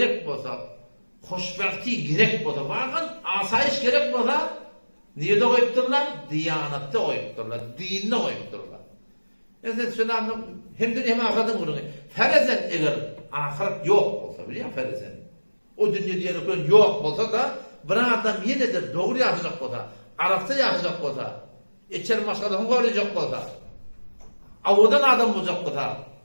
olsa, hoşbahti gerek olsa, varken asayiş gerek olsa, niye de koyupturlar? Diyanette koyupturlar, dinine koyupturlar. Yani şöyle anlam, hem dünya hem ahiretin gururunu. Ferezen eğer ahiret yok olsa biliyor musun ferezen? O dünya diyerekler yok olsa da, bir adam yine de doğru yaşayacak olsa, Arapça yaşayacak olsa, içeri başkadan koruyacak olsa, avudan adam olacak olsa,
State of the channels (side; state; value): both; inverted; correlation -1.00